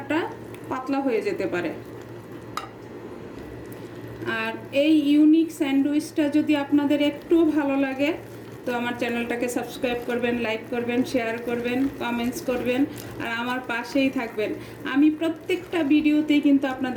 পাতলা হয়ে যেতে পারে। আর এই ইউনিক স্যান্ডউইচটা যদি আপনাদের একটু ভালো লাগে তো আমার চ্যানেলটাকে সাবস্ক্রাইব করবেন, লাইক করবেন, শেয়ার করবেন, কমেন্টস করবেন, আর আমার পাশেই থাকবেন। আমি প্রত্যেকটা ভিডিওতেই কিন্তু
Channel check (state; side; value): identical; both; correlation 1.00